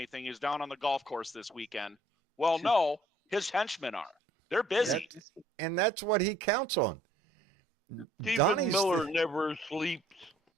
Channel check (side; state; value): both; normal; correlation 0.60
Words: He's down on the golf course this weekend. Well, no, his henchmen are. They're busy, and that's what he counts on. Stephen Miller never sleeps.